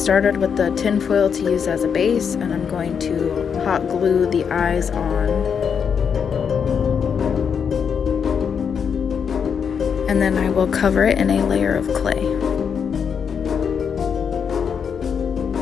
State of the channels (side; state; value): right; quieter; 6.9 dB